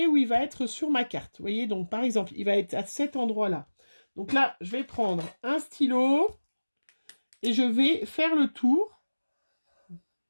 où il va être sur ma carte. Vous voyez, donc par exemple, il va être à cet endroit-là. Donc là, je vais prendre un stylo et je vais faire le tour.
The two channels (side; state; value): both; inverted; correlation -1.00